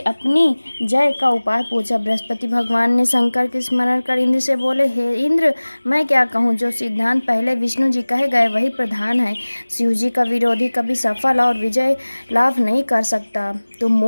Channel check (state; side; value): inverted; both; correlation -1.00